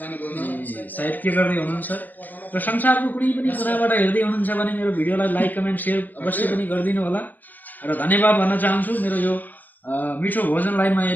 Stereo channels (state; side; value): late; right; 0.086 ms